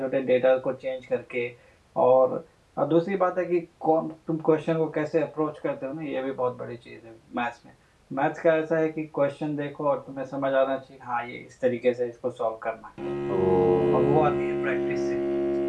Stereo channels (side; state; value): both; identical; correlation 1.00